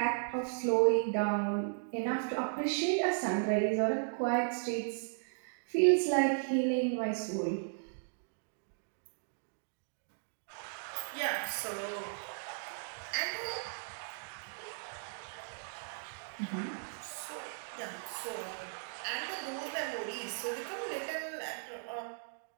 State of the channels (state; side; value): silent; left; digital silence